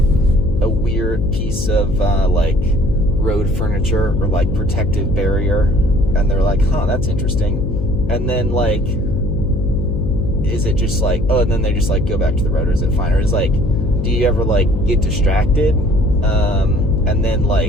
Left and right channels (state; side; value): noise; left; hum, 2 dB below the sound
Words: a weird piece of like road furniture or like protective barrier, and they're like, huh, that's interesting. And then, like, is it just like, oh, and then they just like go back to the road, or is it fine? Or is like, do you ever like get distracted and then